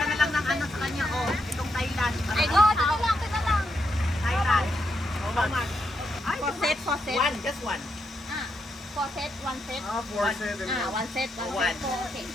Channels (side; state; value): both; normal; correlation 0.81